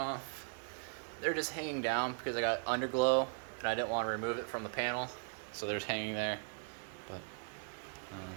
They're just hanging down because I got underglow and I didn't want to remove it from the panel, so they're just hanging there. But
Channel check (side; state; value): left; silent; 52 dB below the other